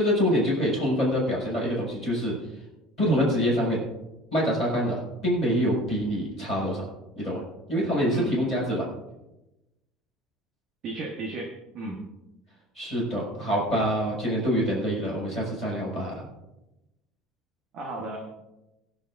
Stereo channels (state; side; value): normal; both; correlation 0.43